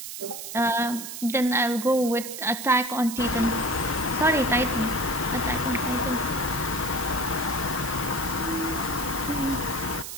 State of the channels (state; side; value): noise; right; hiss, 8 dB below the sound